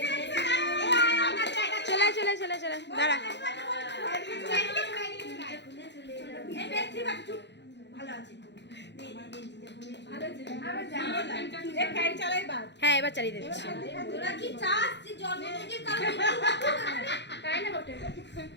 চলে চলে চলে চলে দাঁড়া। হ্যাঁ এবার চালিয়ে দিচ্ছি।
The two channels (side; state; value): right; late; 0.51 ms